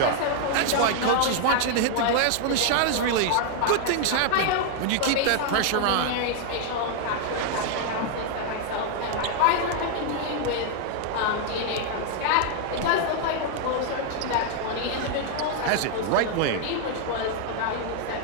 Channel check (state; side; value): different; both; correlation 0.00